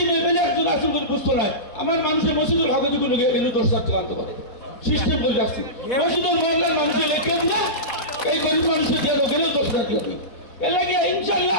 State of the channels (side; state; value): right; late; 4.2 ms